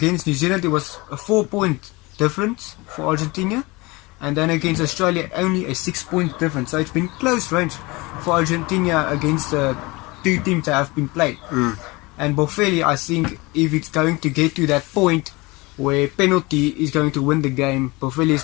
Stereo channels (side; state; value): right; quieter; 23.9 dB